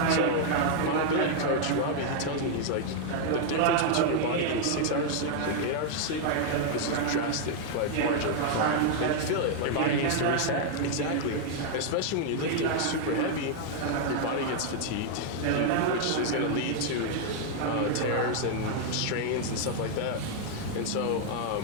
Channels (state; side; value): different; both; correlation 0.00